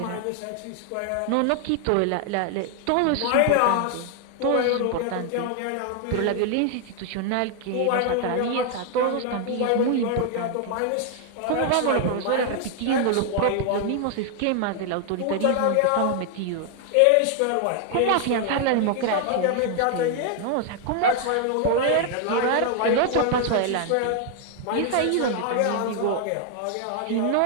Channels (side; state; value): both; different; correlation 0.00